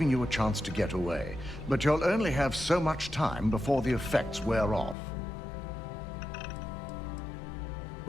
you a chance to get away. But you'll only have so much time before the effects wear off.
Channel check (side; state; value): right; drops out; at 5.0 s